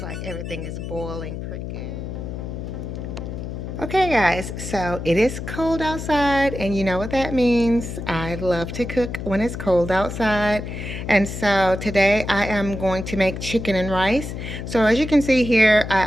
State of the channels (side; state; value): left; noise; hum, 7 dB below the sound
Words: like everything is boiling pretty good. Okay guys, so it is cold outside and you know what that means. I love to cook when it's cold outside. And so today I am going to make chicken and rice. So as you can see here, I